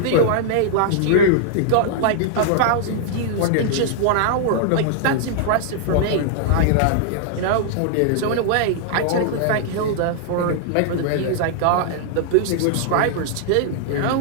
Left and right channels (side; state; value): both; different; correlation -0.01